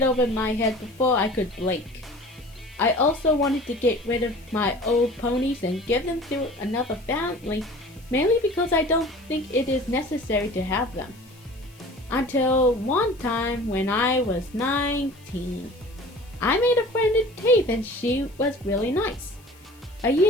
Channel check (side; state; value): left; noise; hiss, 27 dB below the sound